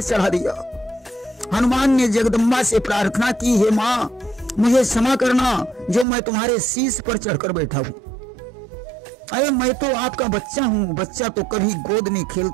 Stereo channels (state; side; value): drops out; left; at 6.1 s